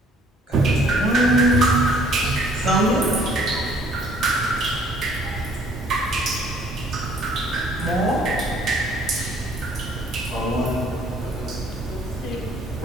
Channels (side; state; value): both; normal; correlation 0.59